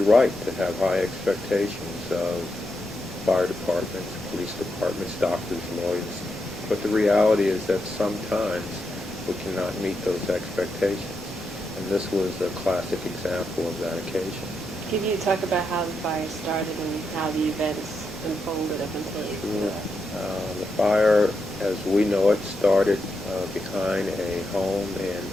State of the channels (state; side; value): normal; both; correlation 0.84